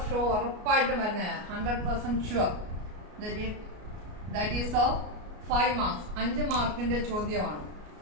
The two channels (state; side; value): late; left; 33 ms